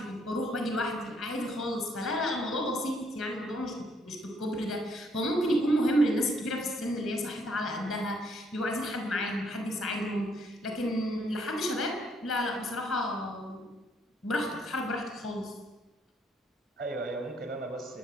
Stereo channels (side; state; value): both; normal; correlation 0.69